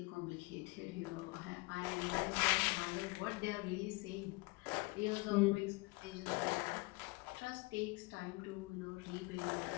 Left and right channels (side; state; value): right; quieter; 25.4 dB